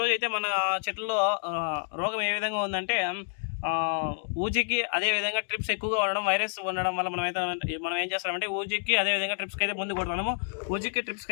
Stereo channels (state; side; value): silent; right; digital silence